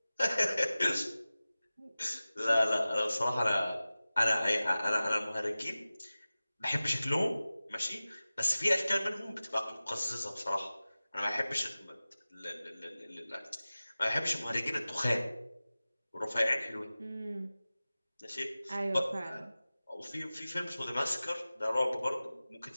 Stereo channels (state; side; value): inverted; both; correlation -0.97